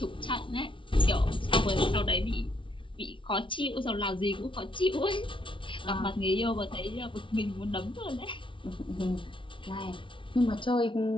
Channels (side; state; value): right; late; 0.25 ms